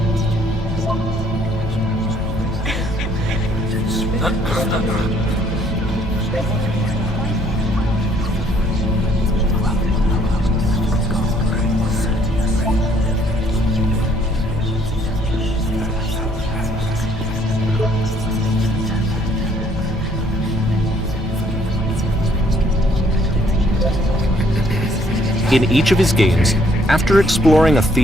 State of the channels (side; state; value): both; normal; correlation 0.64